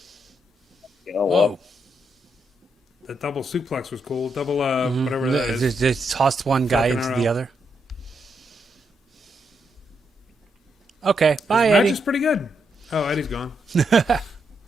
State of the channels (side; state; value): both; normal; correlation 0.80